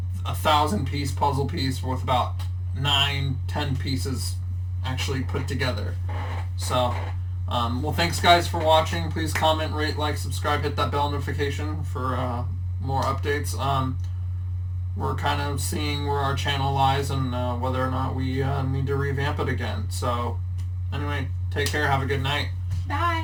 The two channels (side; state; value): both; identical; correlation 1.00